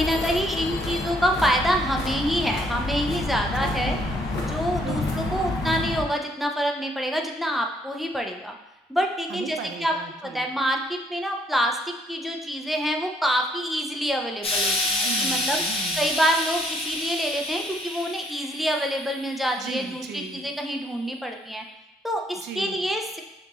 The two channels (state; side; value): normal; both; correlation 0.68